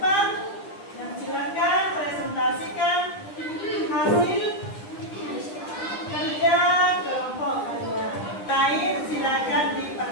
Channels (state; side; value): late; right; 9.9 ms